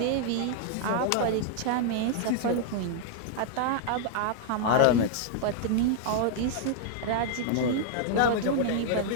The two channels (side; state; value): both; different; correlation 0.00